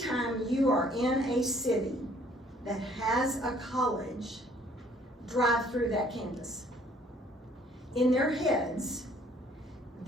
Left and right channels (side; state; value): both; normal; correlation 0.60